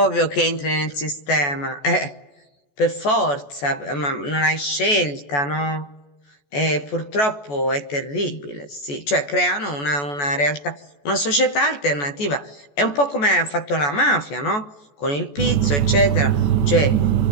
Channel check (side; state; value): right; late; 14 ms